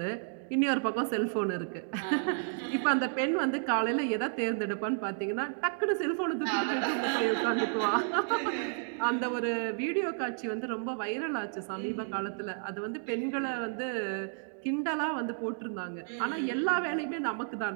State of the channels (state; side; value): silent; left; digital silence